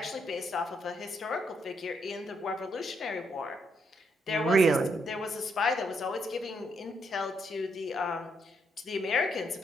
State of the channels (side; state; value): both; normal; correlation 0.76